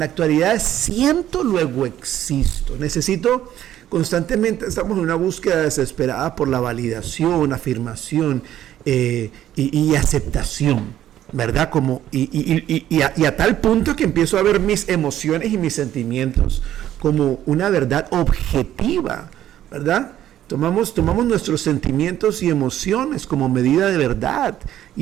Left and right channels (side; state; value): left; quieter; 12.0 dB